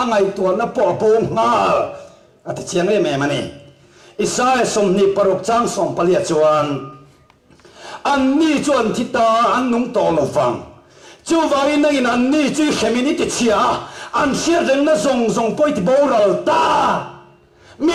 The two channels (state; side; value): identical; both; correlation 1.00